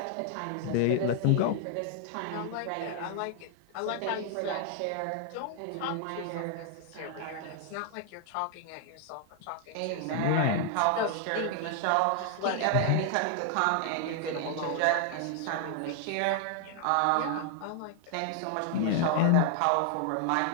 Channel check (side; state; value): both; different; correlation 0.00